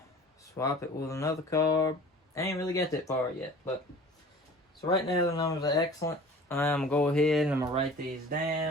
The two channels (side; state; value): both; normal; correlation 0.44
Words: swap it with another carb. I ain't really got that far yet. But so right now the numbers are excellent. I'm going to go ahead and I'm going to write these